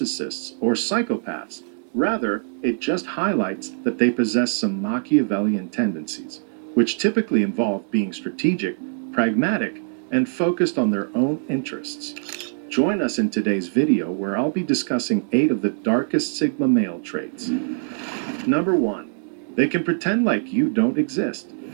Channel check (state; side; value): silent; left; digital silence